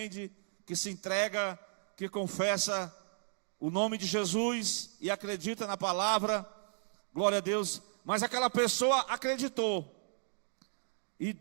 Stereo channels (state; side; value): silent; left; digital silence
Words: que se entrega, que confessa o nome de Jesus e acredita na palavra. Glória a Deus. Mas aquela pessoa acreditou. E